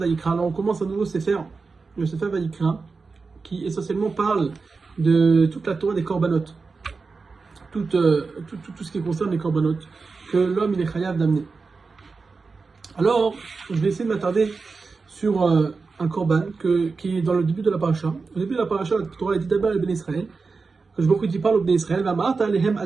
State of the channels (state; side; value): quieter; left; 4.4 dB